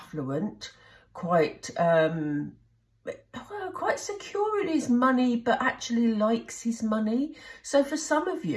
quite secure in his money, but actually likes his money. So for some of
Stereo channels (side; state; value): both; identical; correlation 1.00